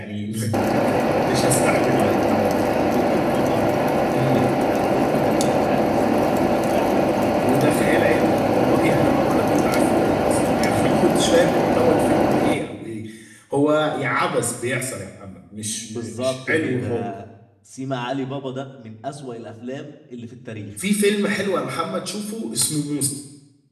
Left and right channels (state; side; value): identical; both; correlation 1.00